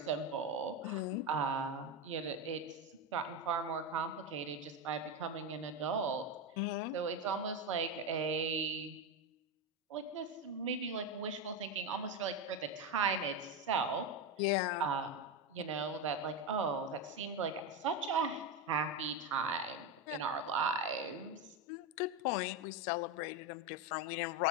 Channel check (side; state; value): both; normal; correlation 0.12